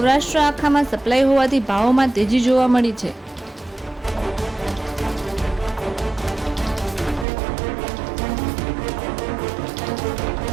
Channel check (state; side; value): drops out; left; at 7.2 s